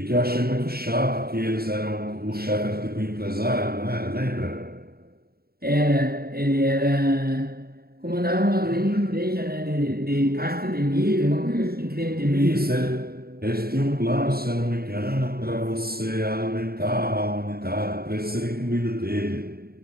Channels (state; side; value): late; left; 0.45 ms